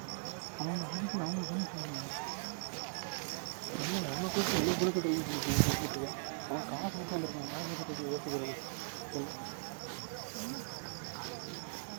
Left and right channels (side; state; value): left; silent; digital silence